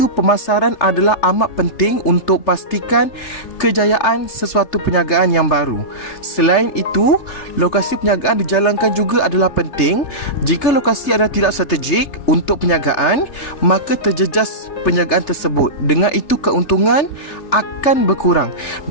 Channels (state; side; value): late; right; 3.3 ms